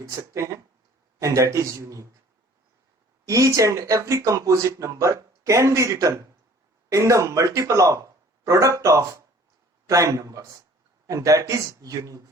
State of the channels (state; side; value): normal; both; correlation 0.52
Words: सकते हैं, and that is unique. Each and every composite number can be written in the multiple of product of prime numbers, and that is unique